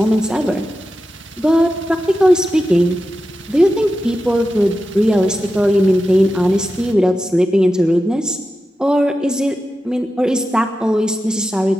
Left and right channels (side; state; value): both; normal; correlation 0.91